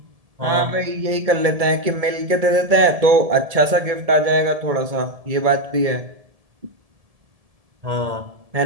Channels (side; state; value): left; late; 1.7 ms